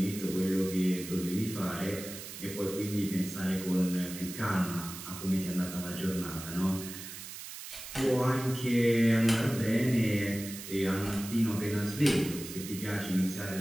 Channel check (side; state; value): right; noise; hiss, 11 dB below the sound